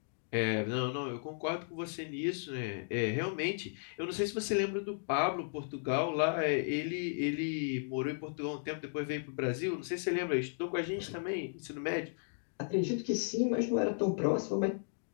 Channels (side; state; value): right; silent; digital silence